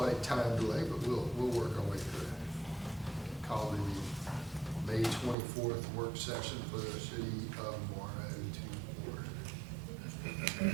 time delay, but we'll work our way through it. Call the May 24th work session for the city of Morrow to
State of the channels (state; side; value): drops out; left; at 5.4 s